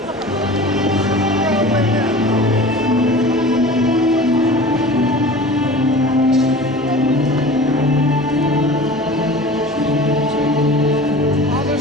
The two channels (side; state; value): both; normal; correlation 0.39